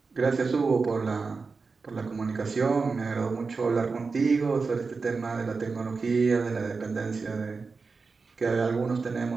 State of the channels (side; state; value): left; quieter; 4.5 dB